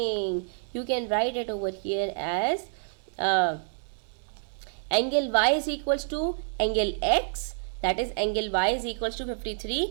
You can write it over here as angle y is equals to angle x, that is angle y is equals to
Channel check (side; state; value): left; silent; digital silence